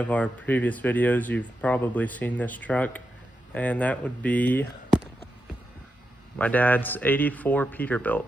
our previous videos, you've probably seen this truck, and that would be my dad's 84 Peterbilt.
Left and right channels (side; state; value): both; normal; correlation 0.87